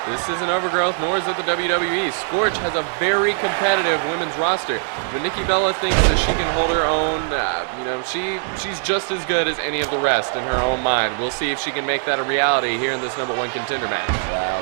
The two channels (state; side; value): silent; left; 65 dB below the other